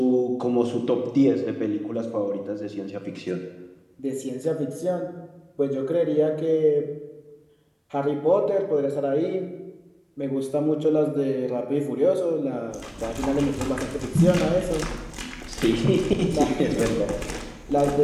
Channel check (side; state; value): both; identical; correlation 1.00